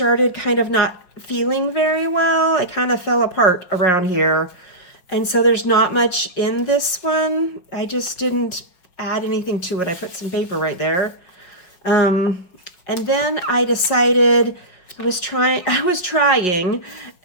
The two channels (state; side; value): late; right; 5.5 ms